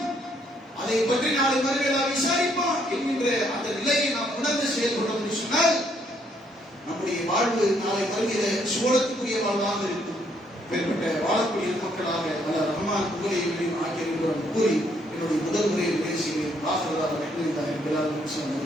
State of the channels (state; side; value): normal; both; correlation 0.70